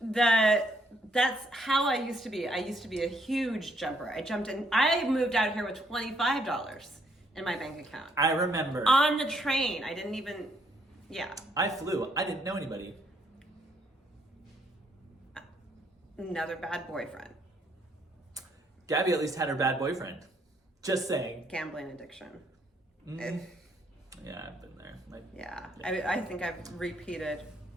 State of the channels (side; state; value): both; normal; correlation 0.70